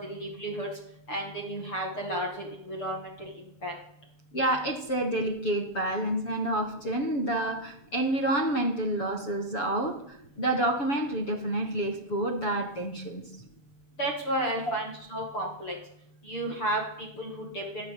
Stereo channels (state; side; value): late; right; 7.0 ms